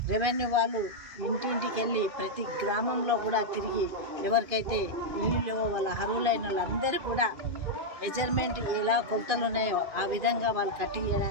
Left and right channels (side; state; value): left; late; 2.5 ms